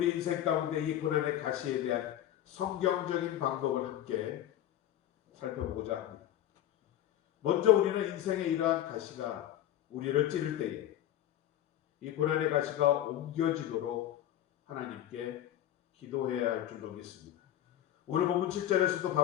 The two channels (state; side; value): quieter; right; 12.3 dB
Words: 인생 가운데 이 고난의 가시에 대한 성경적인 방법을 함께 살펴보고자 합니다. 먼저 우리는 인생의 이러한 가시가 우리를 찌를 때에 이 고난의 가시가 옮겨지도록 하나님께 기도해야 할 줄로 믿습니다. 오늘 본문 7절에서도